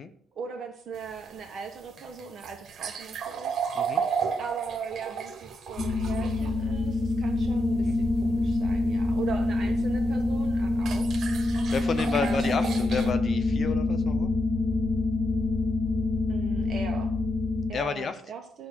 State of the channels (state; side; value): normal; both; correlation 0.83